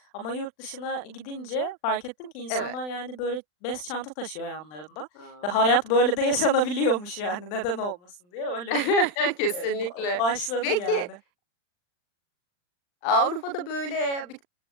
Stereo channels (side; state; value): right; late; 39 ms